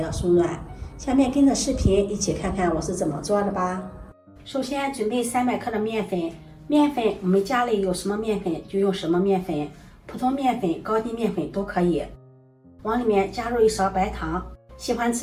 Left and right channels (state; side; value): identical; both; correlation 1.00